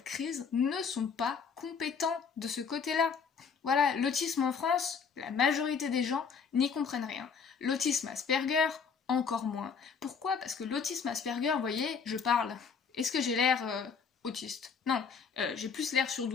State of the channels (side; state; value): right; quieter; 6.0 dB